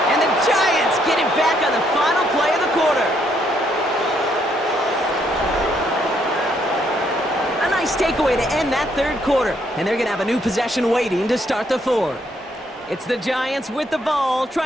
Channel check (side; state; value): both; normal; correlation 0.72